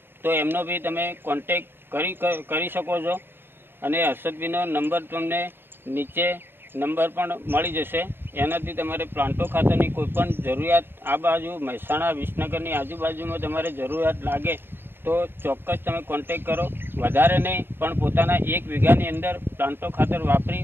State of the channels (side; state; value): left; late; 0.10 ms